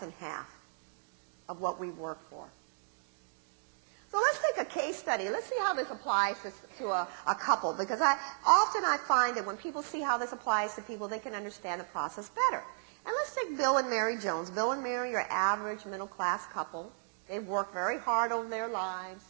half of what we've worked for. So let's take a case study. Let's see how this applies to a couple, because often I find that when people see how this applies to people, they can understand the process better. And let's take Bill and Mary Jones. Bill and Mary are average middle-class couple. They've worked very hard over their lives.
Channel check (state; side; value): silent; left; digital silence